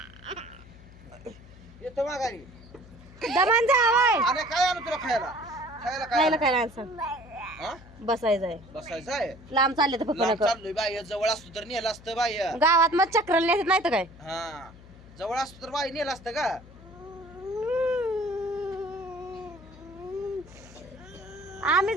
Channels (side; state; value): left; noise; hum, 20 dB below the sound